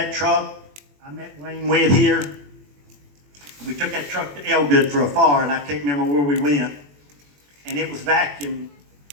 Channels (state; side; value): late; left; 21 ms